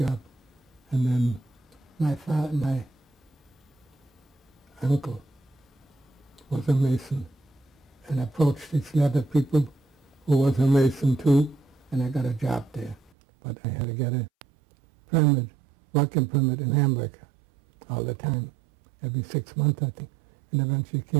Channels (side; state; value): left; drops out; at 13.1 s